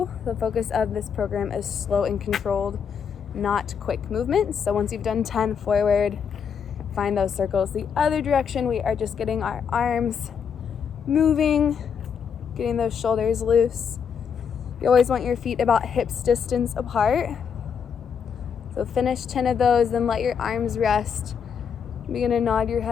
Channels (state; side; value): quieter; right; 7.0 dB